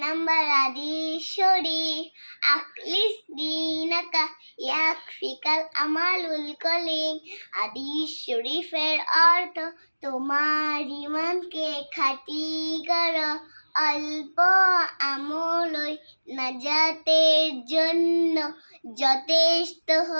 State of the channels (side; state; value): both; inverted; correlation -1.00